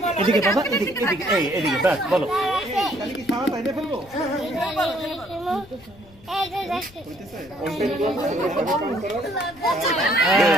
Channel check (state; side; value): noise; left; rumble, 24 dB below the sound